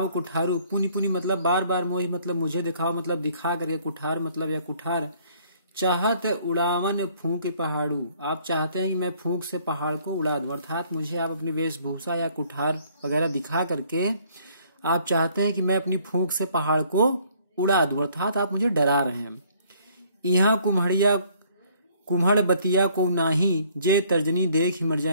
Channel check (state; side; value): inverted; both; correlation -0.61